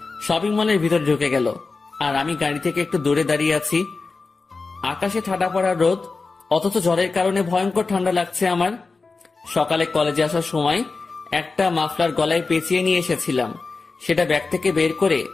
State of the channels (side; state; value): right; quieter; 4.1 dB